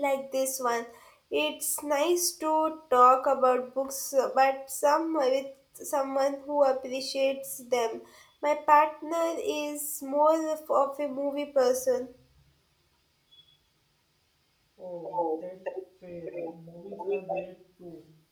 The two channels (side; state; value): both; identical; correlation 1.00